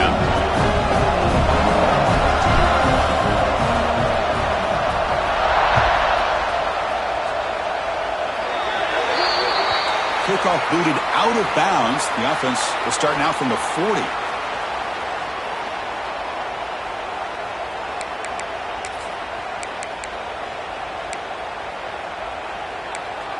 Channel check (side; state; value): both; identical; correlation 1.00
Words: Kickoff booted out of bounds. The offense will start now from the 40.